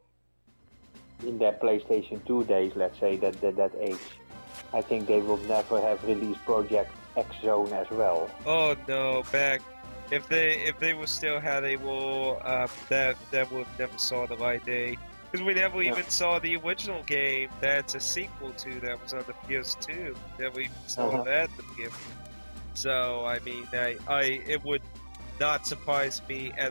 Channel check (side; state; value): both; inverted; correlation -1.00